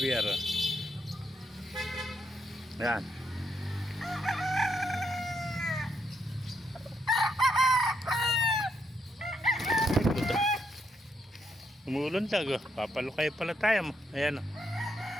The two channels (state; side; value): normal; both; correlation 0.78